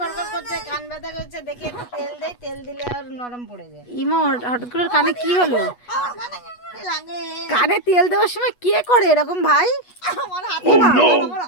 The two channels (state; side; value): late; right; 8.2 ms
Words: করছে, কান ব্যথা করছে, দেখি একটু তেল দেই, তেল দিলে আর নরম পড়ে যায়। ইমা, হঠাৎ করে কানে কি হলো? আমার কানে কেমন লাগে। কানে তেল দেওয়ার সময় কে করে এরকম ভাই? আমার হাতে